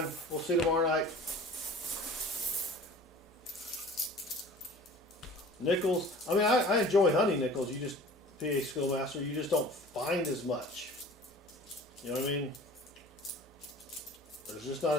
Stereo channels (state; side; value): normal; both; correlation 0.44